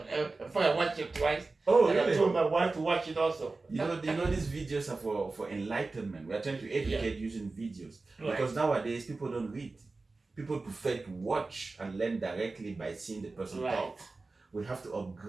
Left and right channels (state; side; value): quieter; left; 3.6 dB